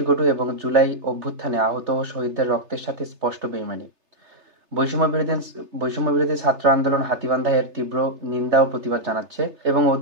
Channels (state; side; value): late; left; 3.3 ms